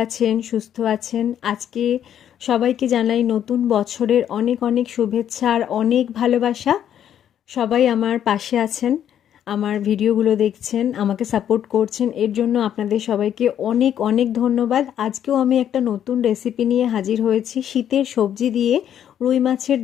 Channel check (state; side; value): quieter; right; 9.9 dB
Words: আছেন, সুস্থ আছেন। আজকে সবাইকে জানাই নতুন বছরের অনেক অনেক শুভেচ্ছা আর অনেক ভালোবাসা। সবাই আমার পাশে আছেন, আমার ভিডিওগুলো দেখছেন, আমাকে সাপোর্ট করছেন, এর জন্য আপনাদের সবাইকে অনেক অনেক ধন্যবাদ। আজকেও আমি একটা নতুন রেসিপি নিয়ে হাজির হয়েছি। শীতের সবজি দিয়ে রুই মাছের